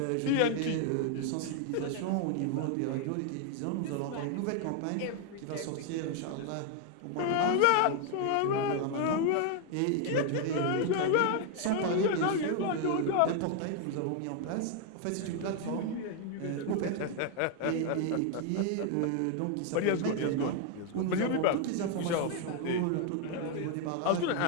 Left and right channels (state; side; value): different; both; correlation 0.00